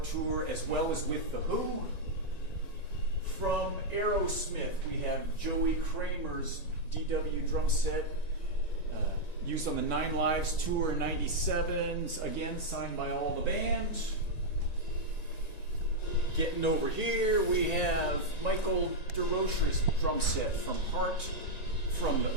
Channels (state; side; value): late; right; 1.9 ms